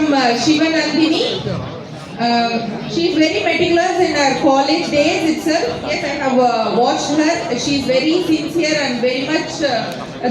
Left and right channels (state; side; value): identical; both; correlation 1.00